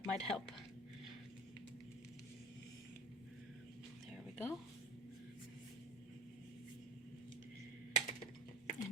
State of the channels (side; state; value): both; normal; correlation 0.35